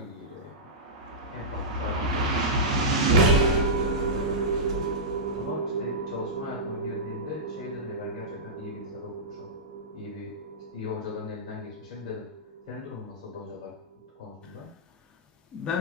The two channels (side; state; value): both; normal; correlation -0.14